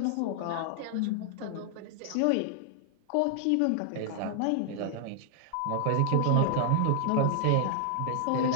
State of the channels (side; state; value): both; different; correlation 0.00